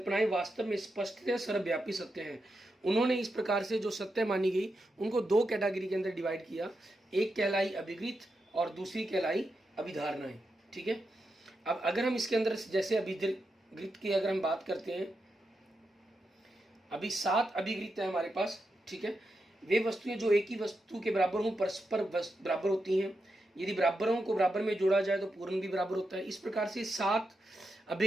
वास्तव में स्पष्टतः सर्वव्यापी सत्य हैं। उन्होंने इस प्रकार से जो सत्य मानी गई उनको 2 कैटेगरी के अंदर डिवाइड किया। एक कहलाई अभिगृत और दूसरी कहलाई अभिधारणाएं, ठीक है। अब अगर हम इसके अंदर जैसे अभिगृत की अगर हम बात करते हैं, अभी 7 अभिगृत है हमारे पास, ठीक है। वे वस्तुएं जो एक ही वस्तु के बराबर हों परस्पर बराबर होती हैं। यदि बराबरों को बराबर में जोड़ा जाए तो पूर्ण भी बराबर होता है। इस प्रकार से 7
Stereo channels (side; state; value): both; normal; correlation 0.86